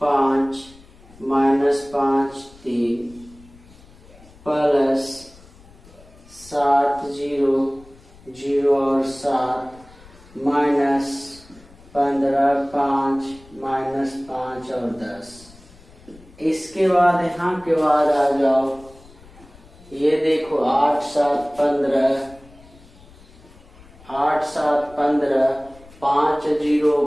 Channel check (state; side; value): noise; left; rumble, 24 dB below the sound